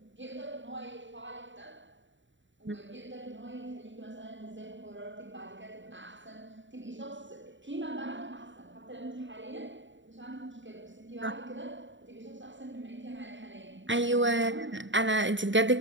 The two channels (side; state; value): left; late; 0.54 ms